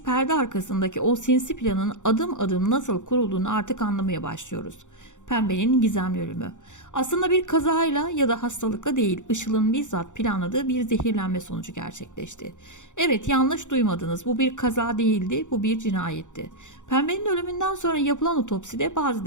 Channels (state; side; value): late; right; 0.85 ms